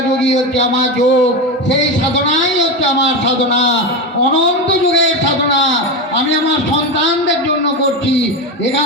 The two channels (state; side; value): normal; both; correlation 0.17